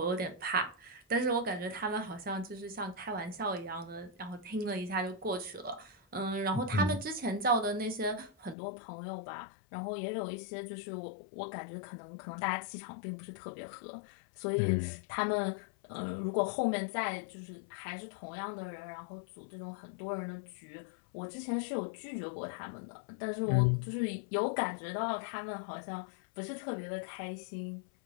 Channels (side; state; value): right; drops out; at 8.6 s